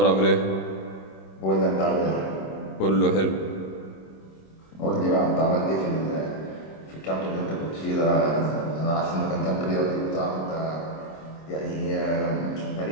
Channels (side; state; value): right; late; 26 ms